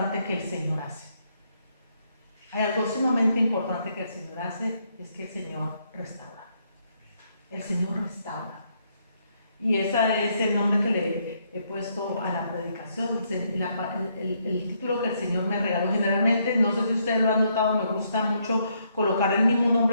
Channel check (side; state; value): both; inverted; correlation -0.73